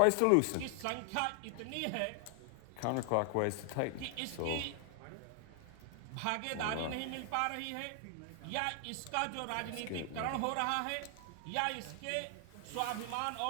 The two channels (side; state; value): both; different; correlation 0.00